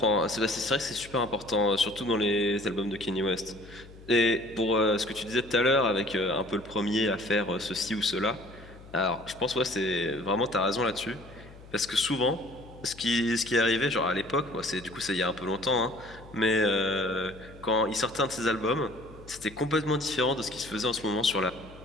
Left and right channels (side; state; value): left; noise; hum, 20 dB below the sound